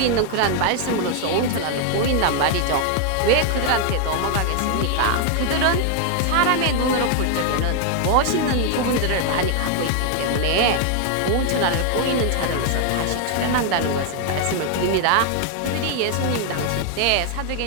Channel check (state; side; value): different; both; correlation 0.00